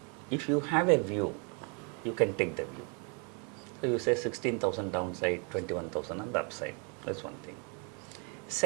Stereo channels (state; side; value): quieter; left; 36.2 dB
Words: if you have a view, you can take the view. So you say 16,000 downside, 21,000 on the upside. That's one thing.